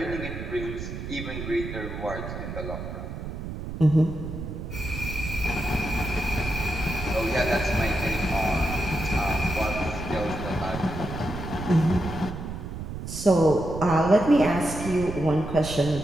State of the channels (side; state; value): right; noise; rumble, 7 dB below the sound